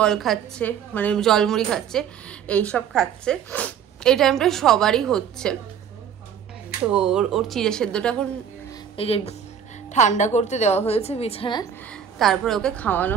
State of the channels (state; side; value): quieter; left; 8.2 dB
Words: খাচ্ছে, মানে জল মুড়ি খাচ্ছে, এইসব খাচ্ছে। এই টাইমটা সবারই হচ্ছে। তো ওর চিড়ে সেদ্ধটা এখন এই যে ঠান্ডা করতে দেওয়া হয়েছে বিছানায়, তারপরে ওকে খাওয়ানো